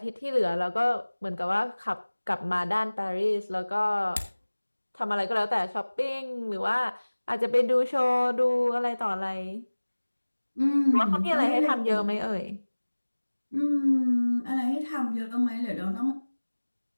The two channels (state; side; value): inverted; both; correlation -1.00